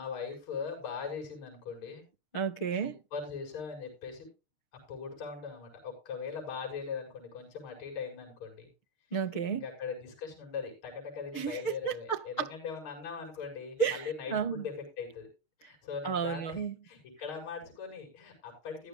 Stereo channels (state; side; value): late; right; 6.5 ms